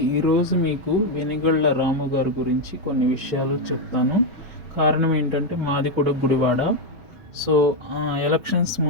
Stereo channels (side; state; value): both; normal; correlation 0.04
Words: ఈరోజు మీకు వెనిగళ్ళ రాము గారి గురించి కొన్ని విషయాలు చెప్తాను. కారణం ఏంటంటే మాది కూడా గుడివాడ. సో ఎలక్షన్స్